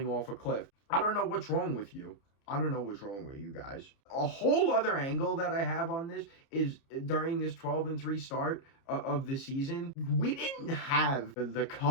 off a cliff. I don't know what's wrong with you. I don't know what's wrong with you guys. A whole other angle that I have on this is during this 12-3 start of the season, we didn't have the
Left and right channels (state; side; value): late; right; 30 ms